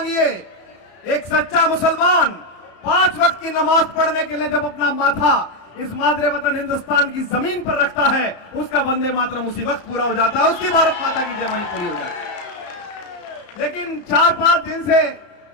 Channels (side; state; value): right; late; 34 ms